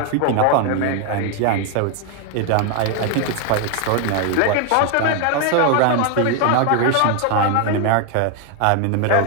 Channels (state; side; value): different; both; correlation 0.01